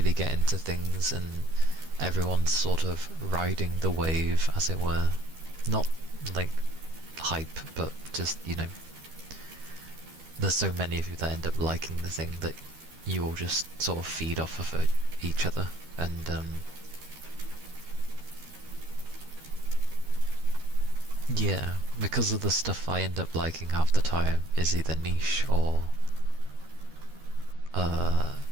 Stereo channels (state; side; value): late; left; 13 ms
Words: get into things and everyone's sort of riding the wave, as it were. Not like hype, but just, you know, there's so many of you that end up liking the thing that you all just sort of feed off of each other, and yeah, because of the stuff I end up liking half the time is either niche or